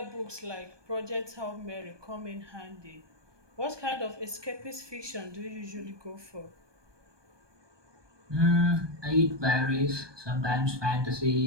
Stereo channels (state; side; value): late; left; 1.2 ms